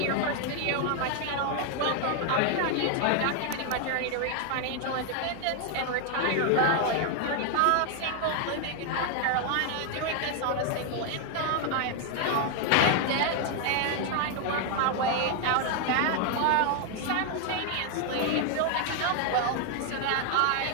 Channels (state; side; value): different; both; correlation 0.00